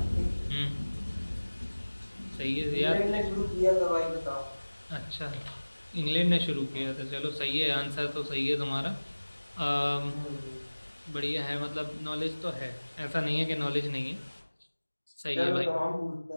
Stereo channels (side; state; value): both; inverted; correlation -1.00